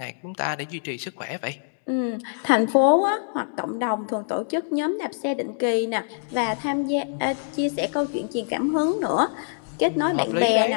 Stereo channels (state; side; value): silent; right; digital silence